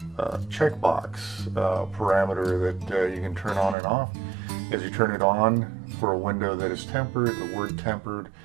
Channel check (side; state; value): left; drops out; at 3.8 s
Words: checkbox parameter that you can turn on and off. As you turn it on for a window that is tempered, the word tempered